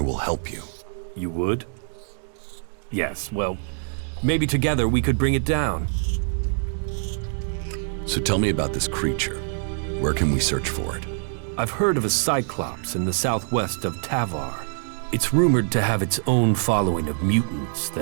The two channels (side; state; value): left; silent; 62 dB below the other